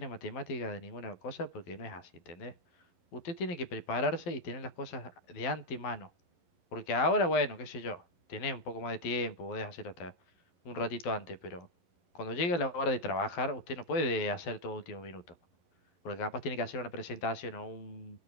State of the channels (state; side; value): late; right; 12 ms